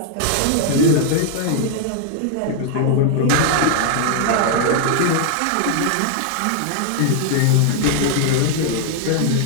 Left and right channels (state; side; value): different; both; correlation 0.00